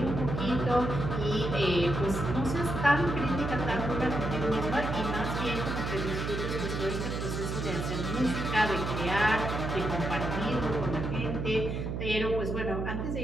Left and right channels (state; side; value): noise; right; hum, 3 dB below the sound